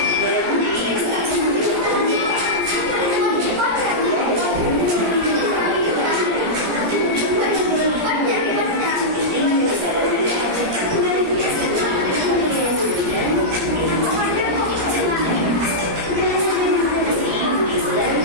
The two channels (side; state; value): left; late; 17 ms